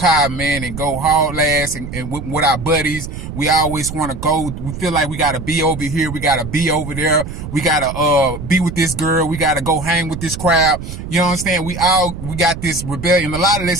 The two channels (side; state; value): right; noise; rumble, 9 dB below the sound